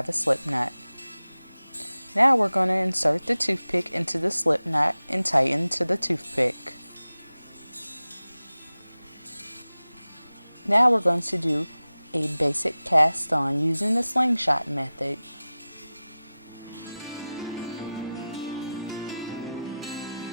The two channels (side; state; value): both; inverted; correlation -0.96